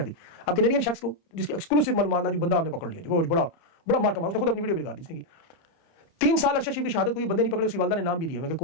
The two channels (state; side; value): late; right; 30 ms